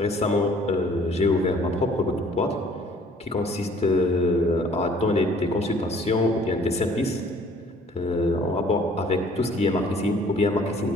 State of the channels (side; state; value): both; normal; correlation 0.56